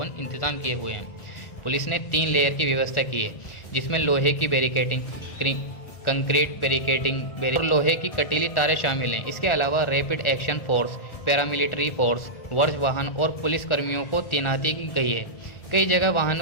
इंतजाम किए हुए हैं। पुलिस ने 3 लेयर की व्यवस्था की है, जिसमें लोहे की बैरिकेडिंग, कंक्रीट बैरिकेडिंग और लोहे की कटीली तारें शामिल हैं। इसके अलावा rapid action force, paramilitary force, वर्ष वाहन और पुलिस कर्मियों को तैनाती की गई है। कई जगह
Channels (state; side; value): late; right; 1.4 ms